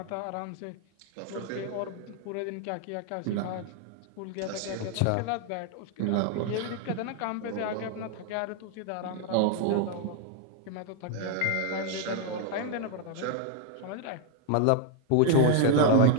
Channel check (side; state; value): both; different; correlation 0.01